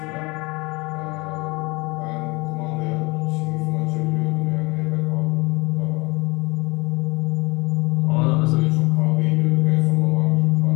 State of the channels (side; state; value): right; quieter; 24.9 dB